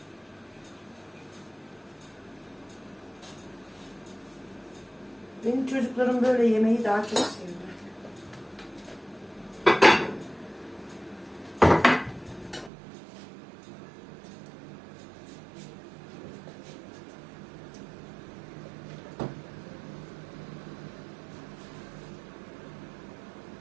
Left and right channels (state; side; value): drops out; left; at 12.7 s